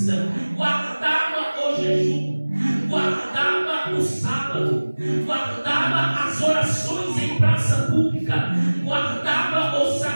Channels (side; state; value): both; inverted; correlation -1.00